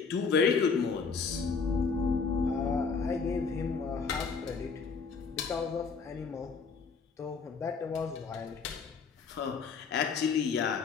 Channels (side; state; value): right; quieter; 5.2 dB